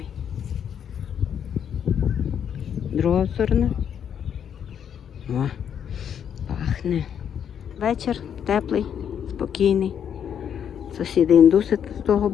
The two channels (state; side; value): quieter; right; 8.5 dB